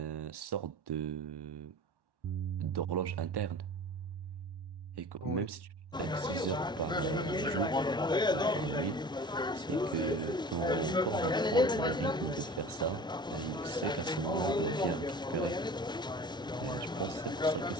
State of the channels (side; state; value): both; normal; correlation 0.39